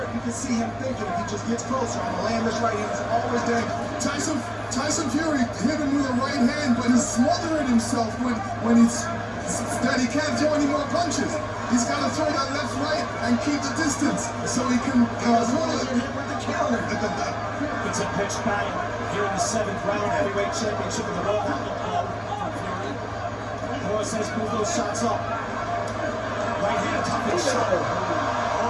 you can see him thinking if he just gets closer, I'm going to land this right hand. It's always dangerous. Tyson Fury hit him with a right hand, but he's smothering himself when he can't throw any more punches. He's got to throw that left, right, and keep the distance so he can hold it with the counter. It's a pitched battle here in the 7th round, heavyweight championship of the world. That looked low from Fury. Moore says move those shots up. Right hand cupping shot.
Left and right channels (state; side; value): identical; both; correlation 1.00